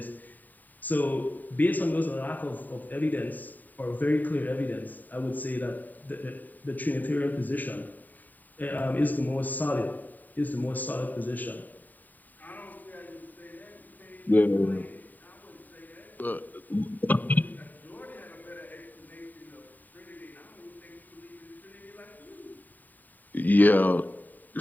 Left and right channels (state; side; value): late; right; 0.086 ms